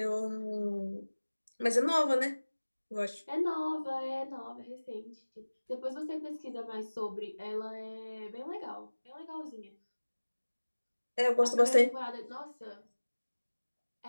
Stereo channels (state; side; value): inverted; both; correlation -1.00